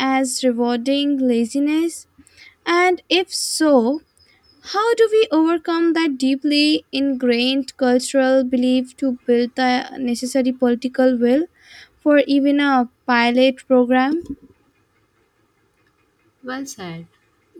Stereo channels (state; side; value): identical; both; correlation 1.00